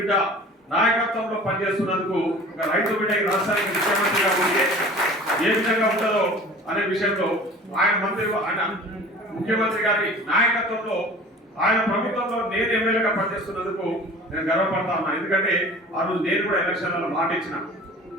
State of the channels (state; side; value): normal; both; correlation 0.42